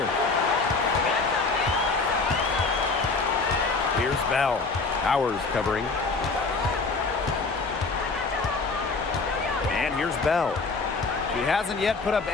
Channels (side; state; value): right; quieter; 4.1 dB